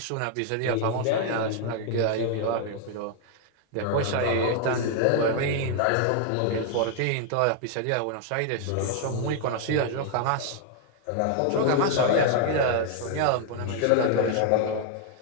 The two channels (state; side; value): different; both; correlation 0.00